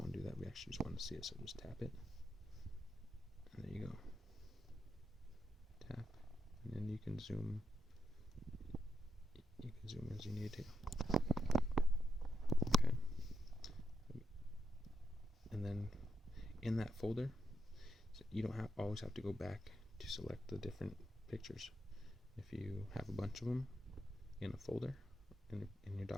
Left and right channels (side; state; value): both; normal; correlation 0.84